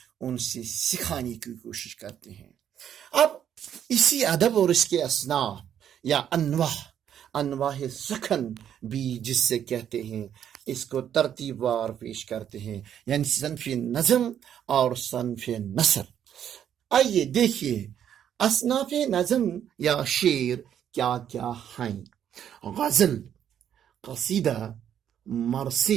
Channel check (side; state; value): left; quieter; 9.6 dB